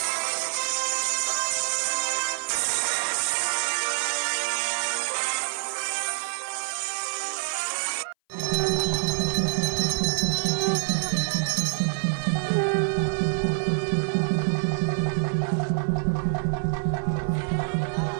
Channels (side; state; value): left; silent; 58 dB below the other